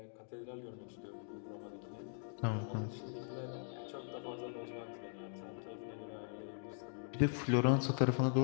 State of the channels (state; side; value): silent; right; digital silence